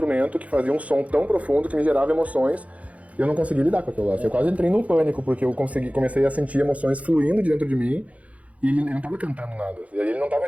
que fazia um som tão profundo que me gerava emoções. E eu não conseguia lidar com aquilo lá. Eu quase entrei num pânico, porque eu comecei a sentir emoções fluindo de dentro de mim. E ele não estava cantando nada. E aí ele não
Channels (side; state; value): left; late; 0.067 ms